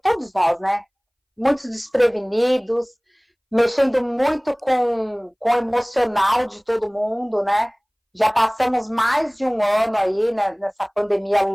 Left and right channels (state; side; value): identical; both; correlation 1.00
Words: todos nós, né? Muitos desprevenidos, mexendo muito com o emocional de todo mundo, né? Já passamos mais de um ano aí, né, nessa pandemia